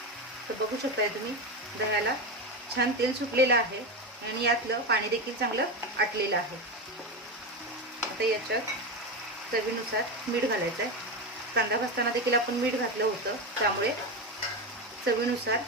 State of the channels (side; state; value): both; normal; correlation 0.17